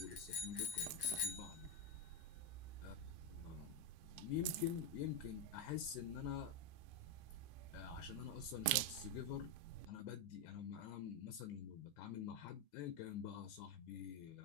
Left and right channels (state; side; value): normal; both; correlation 0.05